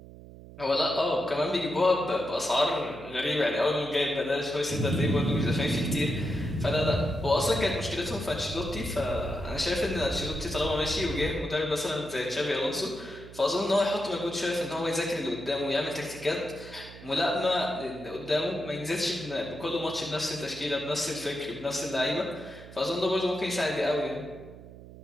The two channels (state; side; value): noise; right; hum, 17 dB below the sound